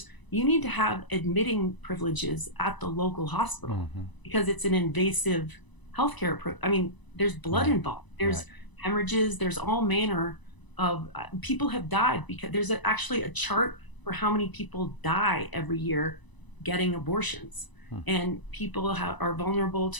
you need to have admitting privileges at the local hospital because it's an invasive healthcare. I mean, there's blood involved. There's hemorrhages. There's all manner of people have died because there's actually a chart for how many people die every year getting abortions, and people are vulnerable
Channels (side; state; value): right; late; 1.0 ms